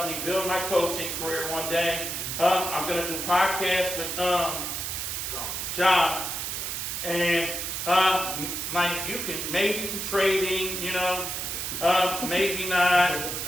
me build my coaching career one day. I'm going to do podcasts with John. And like, you can maybe some trading, you know, maybe not.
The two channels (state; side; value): noise; right; hiss, 3 dB below the sound